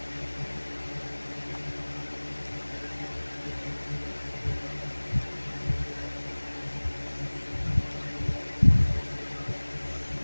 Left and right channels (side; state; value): both; inverted; correlation -1.00